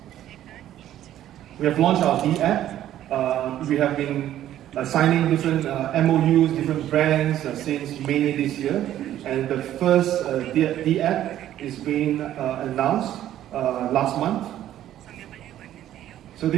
We have launched our D app. We have been signing different MOUs, different brands since May this year. And the first D app is being announced last month. So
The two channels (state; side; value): quieter; left; 12.2 dB